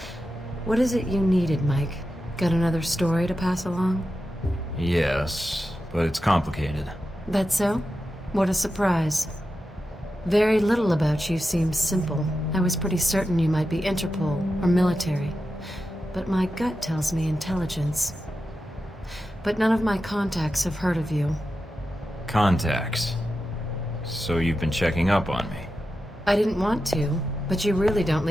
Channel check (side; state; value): both; normal; correlation 0.91